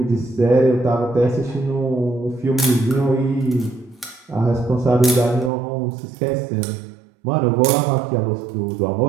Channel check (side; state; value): left; drops out; at 5.5 s